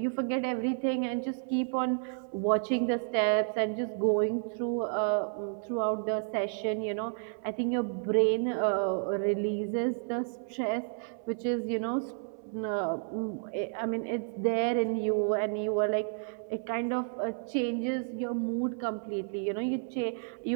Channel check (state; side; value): silent; left; 57 dB below the other